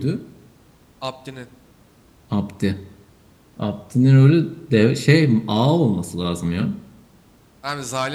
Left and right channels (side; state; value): both; identical; correlation 1.00